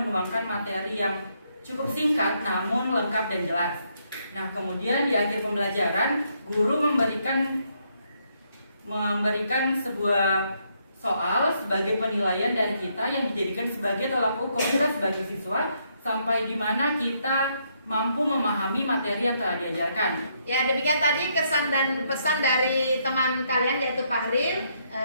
materi yang cukup singkat namun lengkap dan jelas. Nah, kemudian di akhir pembelajaran guru memberikan sebuah soal sebagai penilaian dari kita yang dijadikan sebagai tolak ukur kita sebagai siswa sampai di mana kita mampu memahami materi yang telah diajarkan. Ya, demikian tadi kesan dan pesan dari teman kalian yaitu Fahril.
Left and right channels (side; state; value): both; inverted; correlation -0.74